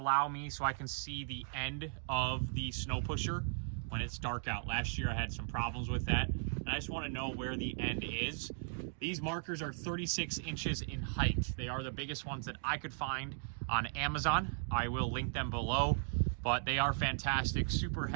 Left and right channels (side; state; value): left; silent; digital silence